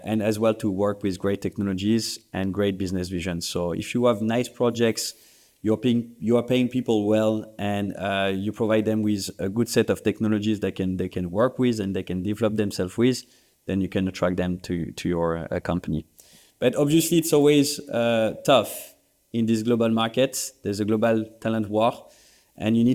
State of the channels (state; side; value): identical; both; correlation 1.00